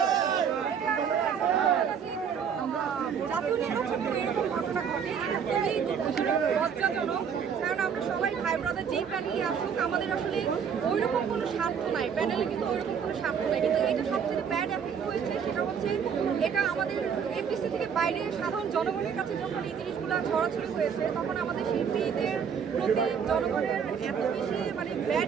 জাতীয় নির্বাচনে এরকম ঘটনা ঘটে, এটা খুবই লজ্জাজনক। কারণ আমরা সবাই ভাই ব্রাদার, যেই প্যানেলই আসুক আমাদের আসলে ওইরকম কোনো স্বার্থ নাই, প্যানেলে কিন্তু ওইরকম কোনো স্বার্থ নাই। কিন্তু এটা সবচেয়ে ব্যাড এফেক্ট হয়েছে সেটা হচ্ছে এটা আমাদের এমপিসি থেকে বাইরে সাধারণ জনগণের কাছে যখন এই জিনিসগুলো ছড়াছড়ি হয়েছে, তখন আমাদের শিল্পীদের প্রতি জনগণের এত বেশি মানে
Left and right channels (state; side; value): quieter; left; 7.2 dB